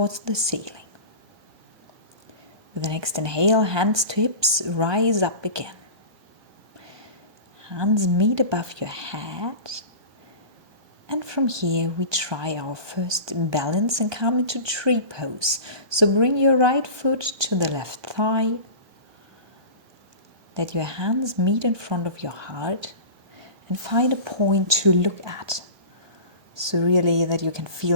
the ceiling. With the next inhale, hands to hips, rise up again. Hands meet above your head. And from here we try our first balance and come into tree pose. So bring your right foot to the left thigh. Let your hands meet in front of your heart and find a point to look at. So really that you can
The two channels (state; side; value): late; left; 1.2 ms